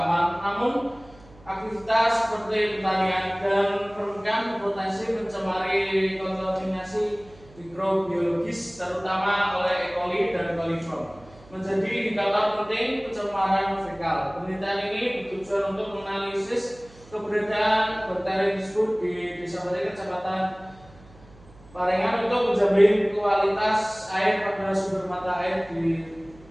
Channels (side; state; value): right; noise; hum, 24 dB below the sound